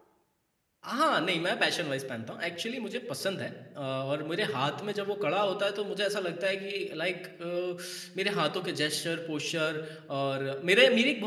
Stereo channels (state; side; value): identical; both; correlation 1.00